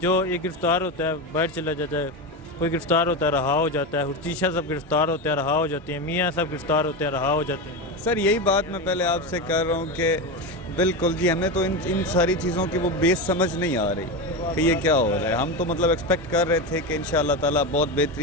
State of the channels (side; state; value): both; normal; correlation 0.18